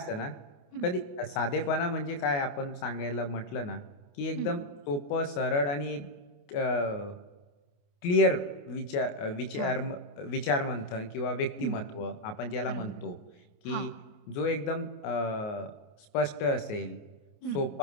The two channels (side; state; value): right; late; 29 ms